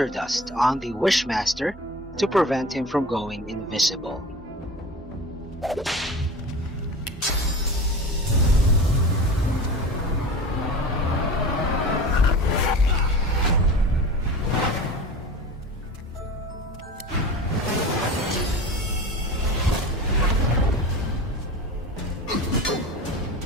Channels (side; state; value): both; normal; correlation 0.34